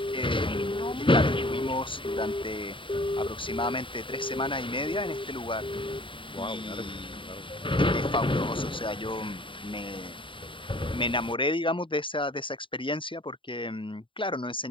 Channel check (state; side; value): late; right; 0.25 ms